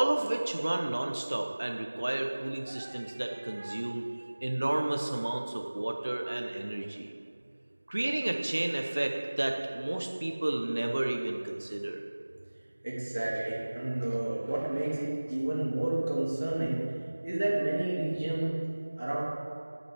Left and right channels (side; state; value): both; inverted; correlation -1.00